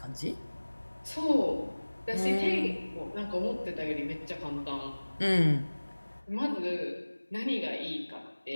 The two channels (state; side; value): inverted; both; correlation -1.00